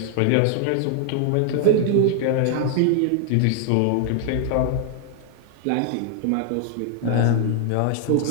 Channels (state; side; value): different; both; correlation -0.01